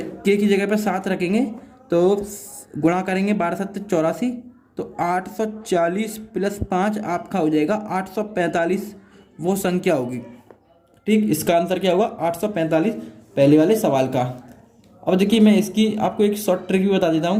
के की जगह पर 7 रखेंगे तो गुणा करेंगे 12 7 84, तो 840 प्लस 5 आपका हो जाएगा 845, वो संख्या होगी। ठीक, इसका आंसर क्या होगा 845, पहले वाले सवाल का। अब देखिए मैं इसकी आपको एक शॉर्ट ट्रिक भी बता देता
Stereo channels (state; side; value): identical; both; correlation 1.00